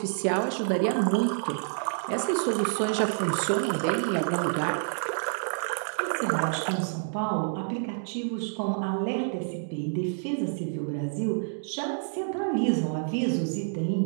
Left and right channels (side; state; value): left; silent; digital silence